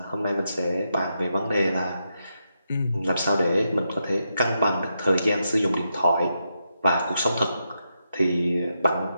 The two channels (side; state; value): both; inverted; correlation -0.84